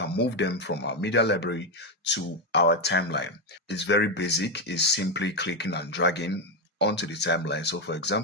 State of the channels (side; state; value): both; normal; correlation 0.07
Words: move them from our media library to our timeline. It's very basic. It's simply clicking and dragging onto the timeline. So for